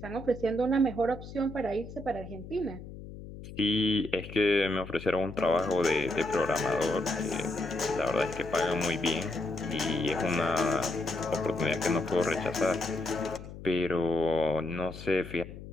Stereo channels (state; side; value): noise; left; hum, 13 dB below the sound